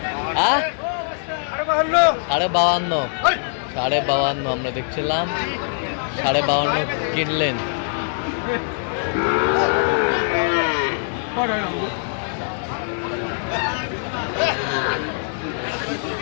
সাড়ে বাউান্ন আমরা দেখছিলাম 52.5 কিনলেন।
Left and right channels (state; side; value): silent; right; digital silence